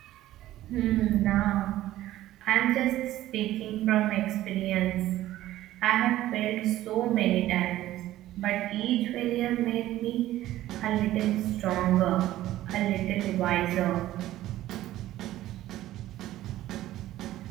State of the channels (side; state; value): left; quieter; 14.6 dB